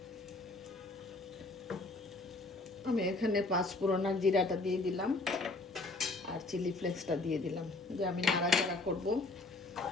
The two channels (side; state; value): right; quieter; 3.2 dB